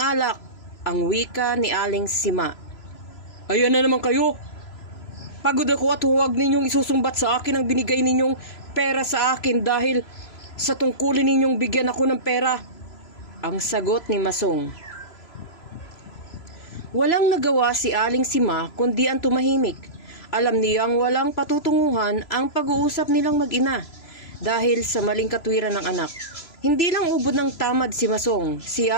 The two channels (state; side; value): late; right; 3.0 ms